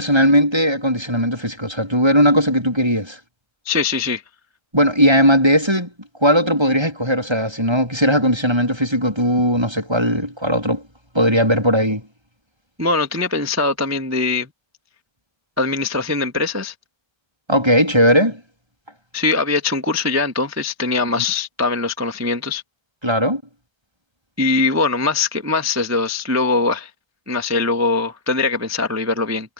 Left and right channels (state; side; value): late; left; 1.3 ms